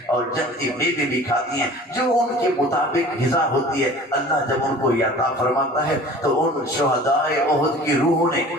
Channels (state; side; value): normal; both; correlation 0.44